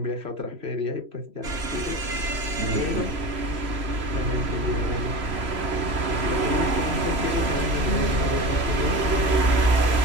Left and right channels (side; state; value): left; late; 3.0 ms